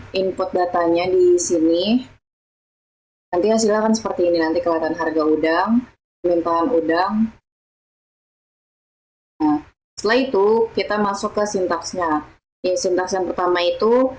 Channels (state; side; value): identical; both; correlation 1.00